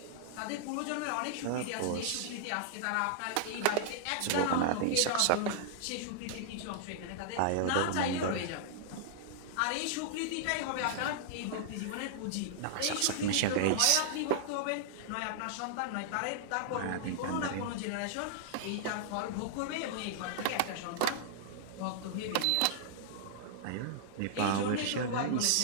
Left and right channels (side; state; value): both; different; correlation -0.01